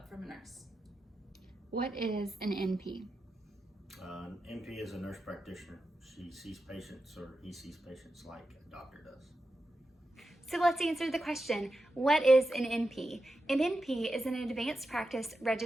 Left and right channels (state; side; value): normal; both; correlation 0.90